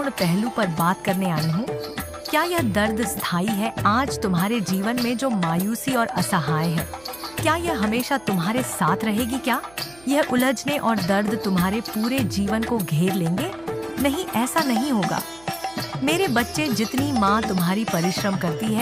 पहलू पर बात करने आई हूँ। क्या यह दर्द स्थायी है? आज तुम्हारे जीवन में जो मायूसी और असहाय है, क्या यह हमेशा तुम्हारे साथ रहेगी? क्या यह उलझने और दर्द तुम्हारे पूरे जीवन को घेर लेंगे? नहीं, ऐसा नहीं होगा मेरे बच्चे। जितनी माँ तुम्हारी परिश्रम करती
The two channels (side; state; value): right; noise; hum, 25 dB below the sound